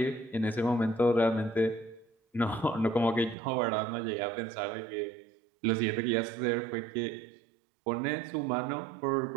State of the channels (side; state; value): left; drops out; at 3.4 s